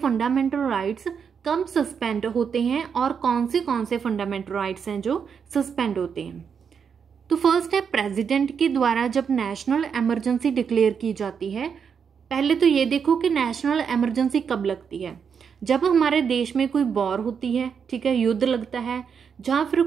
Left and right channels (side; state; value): left; quieter; 6.8 dB